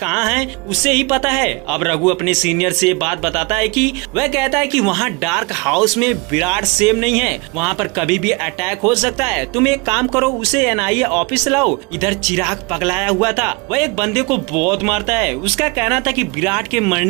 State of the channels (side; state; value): left; quieter; 26.9 dB